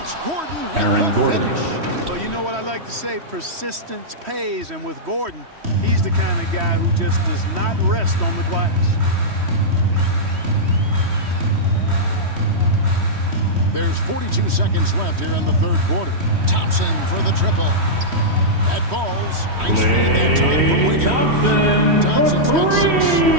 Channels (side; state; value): left; late; 3.1 ms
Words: it's Gordon with Aaron the Gordon. finish. Well, you know what I like to say? Persistence pays. And with Gordon, he's the kind of guy who just does not rest on the glass. There's 42 seconds left here in the third quarter. Thompson for the triple. That falls. Nice feed that time from Wiggins. Thompson's got 6 here in